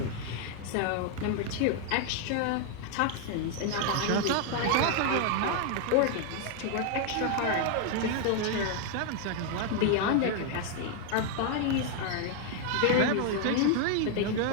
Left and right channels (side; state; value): both; different; correlation 0.00